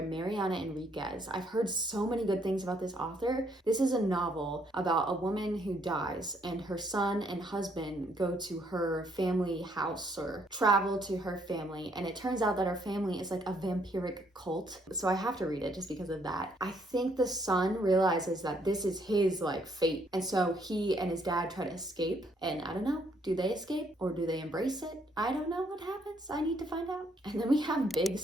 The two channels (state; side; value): normal; both; correlation 0.69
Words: Mariana Enriquez. I've heard so many good things about this author. This is a novel about a woman who dies, and her son and husband go to her family house or travel to her family, and it turns out that her family is like a vampiric cult. So I have to read it just because of that. I think the son realizes that this is his like fate, and so he and his dad try to escape, and I don't know, do they escape? Or do they embrace it? I don't know what happens. I need to find out. And then we have Big